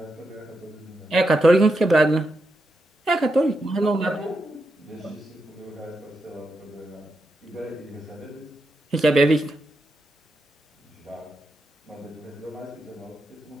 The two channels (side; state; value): both; normal; correlation 0.85